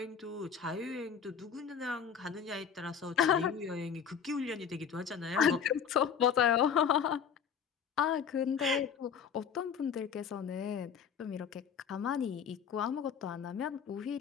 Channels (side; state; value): right; quieter; 7.3 dB